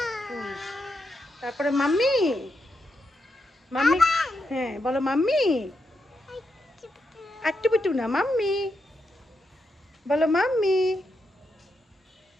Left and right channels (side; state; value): both; normal; correlation 0.84